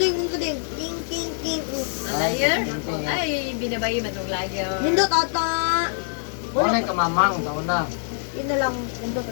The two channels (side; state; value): right; silent; digital silence